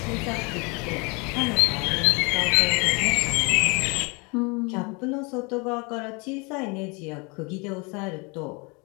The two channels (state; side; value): quieter; right; 29.5 dB